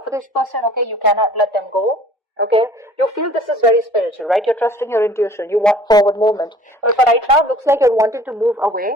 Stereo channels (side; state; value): both; normal; correlation 0.51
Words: for this person, okay? You cannot let them go. Okay, you feel this is very spiritual, right? You're trusting your intuition. You want forward movement. But for right now, it looks like you're wanting to move